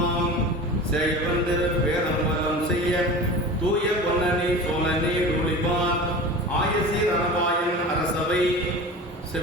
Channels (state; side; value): normal; both; correlation 0.34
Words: செய்வந்து வேதம்பலம் செய்ய தூய பொன்னணி சோழனி ஒளிபான் ஆயசீர் அனபாயன் அரசவை